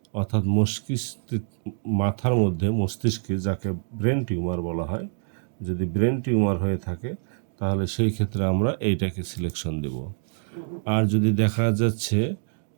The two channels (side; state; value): left; silent; digital silence